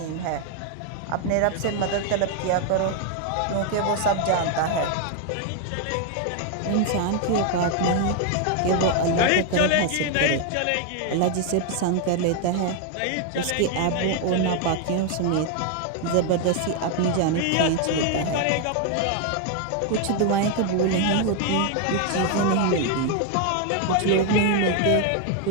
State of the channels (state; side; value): different; both; correlation 0.01